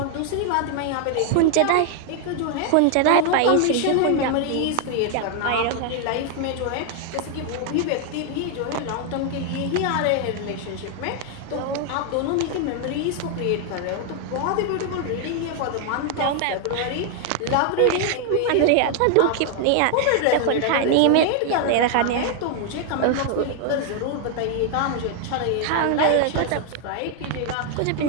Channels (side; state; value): both; different; correlation 0.00